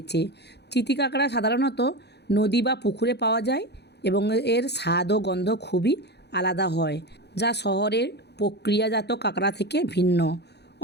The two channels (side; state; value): right; late; 0.49 ms